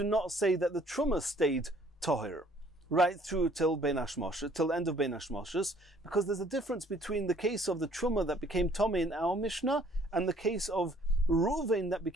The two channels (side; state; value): both; normal; correlation 0.59